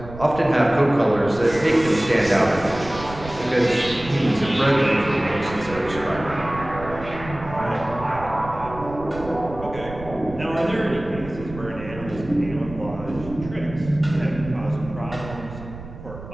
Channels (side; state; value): right; noise; rumble, 13 dB below the sound